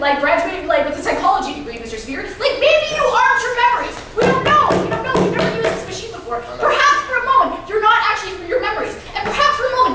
graduated, like, with a psychology degree, Mr. Speaker. Like, maybe you aren't your memories. We don't know. We've never used this machine before. Perhaps for a moment, you're not actually your memories. And perhaps for a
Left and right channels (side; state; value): both; identical; correlation 1.00